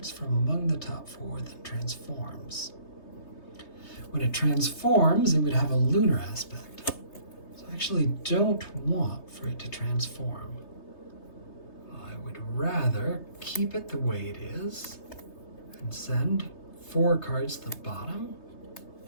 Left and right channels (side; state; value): right; late; 3.3 ms